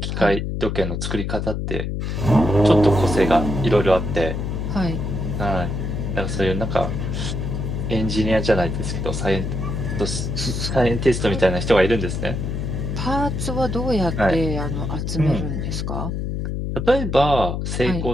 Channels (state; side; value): noise; left; hum, 3 dB below the sound